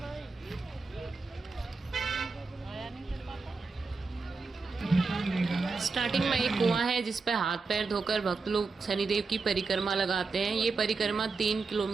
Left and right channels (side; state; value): left; quieter; 4.3 dB